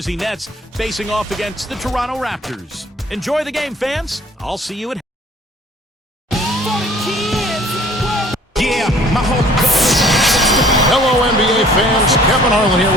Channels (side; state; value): both; normal; correlation 0.54